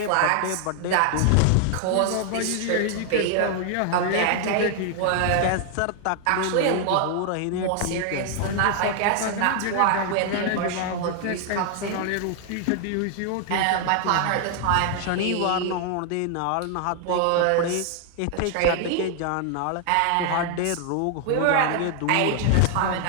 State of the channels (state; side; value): different; both; correlation 0.00